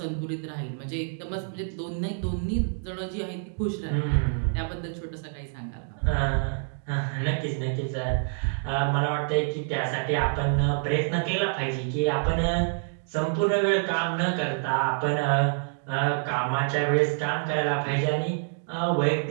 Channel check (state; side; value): silent; left; digital silence